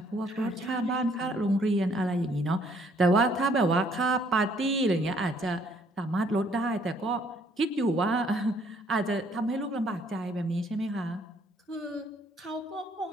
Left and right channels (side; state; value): both; normal; correlation 0.64